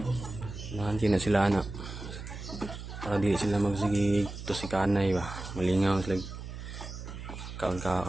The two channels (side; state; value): right; noise; hum, 10 dB below the sound